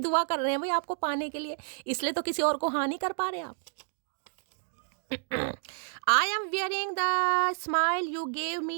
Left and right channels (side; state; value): left; silent; digital silence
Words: कर रहे हैं भाई आपको पाने के लिए, इसलिए तो किसी और को हाँ नहीं कर पा रहे आप। I am wearing the smile you gave